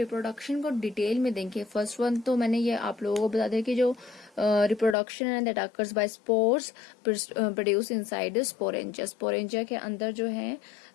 को डिटेल में देखें, फर्स्ट वन तो मैंने ये आप लोगों को बता दिया कि जो रिप्रोडक्शन है that occurs by spores produce inside the sporangia. Sporangia के अंदर जो है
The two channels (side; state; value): right; drops out; at 5.0 s